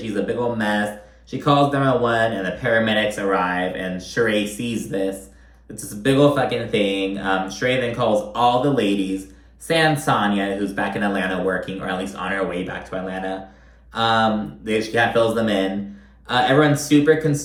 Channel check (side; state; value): both; identical; correlation 1.00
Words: a big old mess. She calls 911, and the paramedics arrive, and Sheree sees this. It's this big old fucking thing. Sheree then calls all the ladies, sans Sonya, who's back in Atlanta working, or at least on her way back to Atlanta. She kind of fills them in. Everyone's super